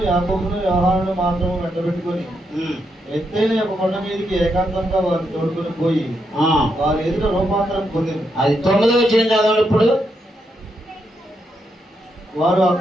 యాకోబును, యోహానును మాత్రము వెంటబెట్టుకొని ఎత్తైన ఒక కొండ మీదకి ఏకాంతంగా వారిని తోడుకొని పోయి వారి ఎదుట రూపాంతరం పొందింది. అది 9వ వచనం చదవండి. ఇప్పుడు వారు ఆ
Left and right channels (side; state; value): both; normal; correlation 0.81